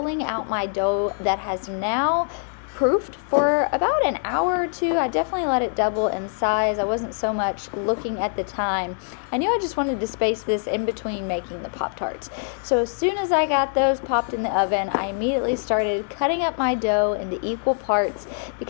out my dough that has now proofed for about an hour or two. I definitely let it double in size. I wasn't so much looking at the time. I knew I just wanted to space this in between making the Pop-Tarts. So as soon as I got those popped in the oven, I immediately started cutting up my dough into equal parts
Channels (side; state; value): right; silent; 61 dB below the other